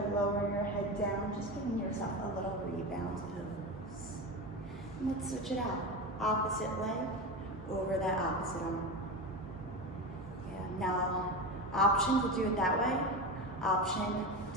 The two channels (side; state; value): both; normal; correlation 0.21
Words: lower your head down, just giving yourself a little rebound pose. And let's switch it out. Opposite leg over that opposite arm. Yeah, now option to do it that way. Option